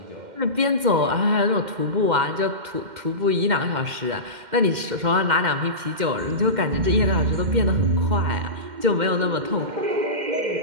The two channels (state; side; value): late; left; 2.1 ms